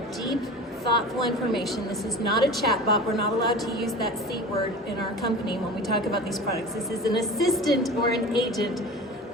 deep, thoughtful information. This is not a chatbot. We're not allowed to use that C word in our company when we talk about these products. This is an assistant or an agent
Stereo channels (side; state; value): both; normal; correlation 0.36